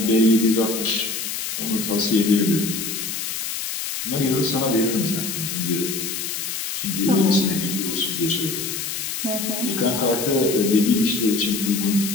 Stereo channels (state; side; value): noise; left; hiss, 4 dB below the sound